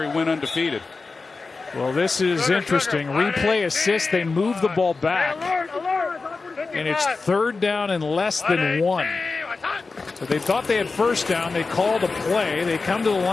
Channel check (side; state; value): right; quieter; 4.1 dB